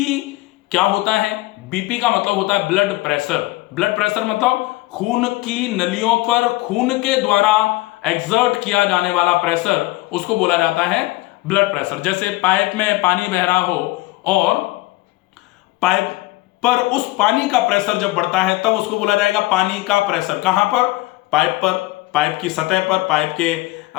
क्या होता है? बीपी का मतलब होता है ब्लड प्रेशर। ब्लड प्रेशर मतलब खून की नलियों पर खून के द्वारा एक्सर्ट किया जाने वाला प्रेशर, उसको बोला जाता है ब्लड प्रेशर। जैसे पाइप में पानी बह रहा हो और पाइप पर उस पानी का प्रेशर जब बढ़ता है तब उसको बोला जाएगा पानी का प्रेशर। कहां पर? पाइप पर, पाइप की सतह पर, पाइप के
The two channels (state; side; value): quieter; right; 19.9 dB